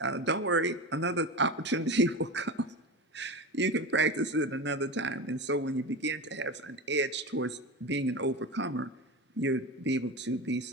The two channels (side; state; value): both; normal; correlation 0.25